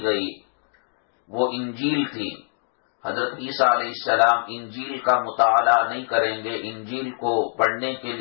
گئی وہ انجیل تھی۔ حضرت عیسیٰ علیہ السلام انجیل کا مطالعہ نہیں کریں گے، انجیل کو پڑھنے کے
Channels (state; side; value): silent; right; digital silence